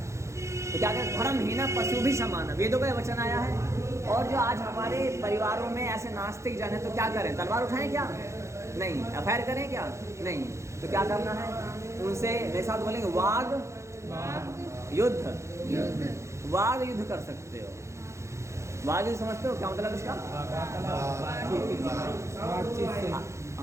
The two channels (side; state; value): left; late; 0.14 ms